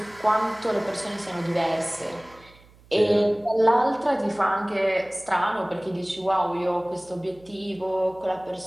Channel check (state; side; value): noise; right; hum, 26 dB below the sound